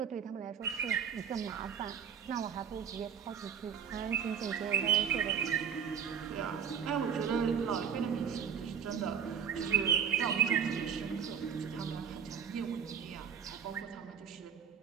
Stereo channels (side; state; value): left; quieter; 7.7 dB